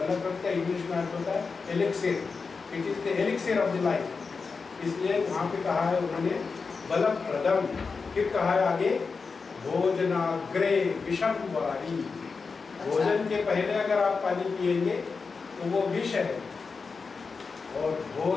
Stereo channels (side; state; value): right; quieter; 4.8 dB